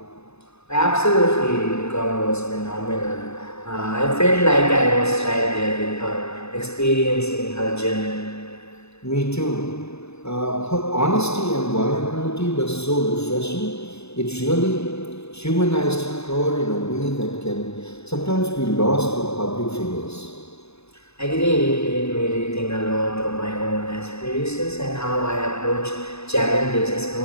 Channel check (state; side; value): late; right; 0.80 ms